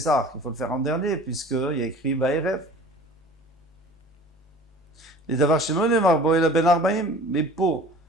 il faut le faire en dernier, puisqu'il y a écrit Ba'erev. Les d'avoir chez Nemarbo et la Ben Arbaim, mais pour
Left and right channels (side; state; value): both; normal; correlation 0.44